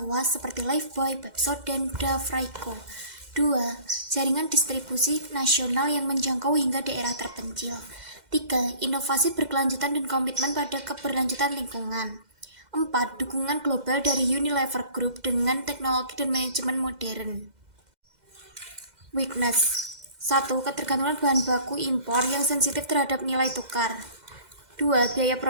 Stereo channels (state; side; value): late; left; 2.1 ms